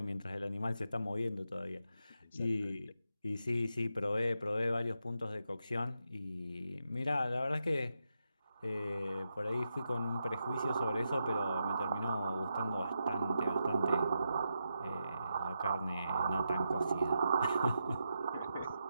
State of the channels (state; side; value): inverted; both; correlation -0.85